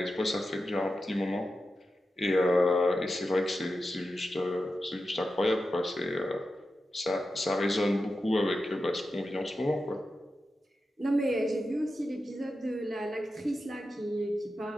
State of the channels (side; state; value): both; normal; correlation 0.91